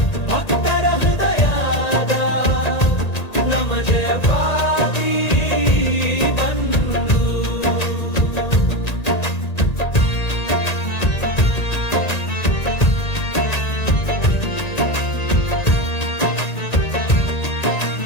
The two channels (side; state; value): right; late; 1.9 ms